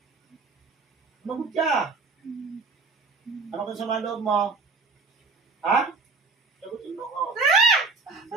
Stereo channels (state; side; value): quieter; left; 4.1 dB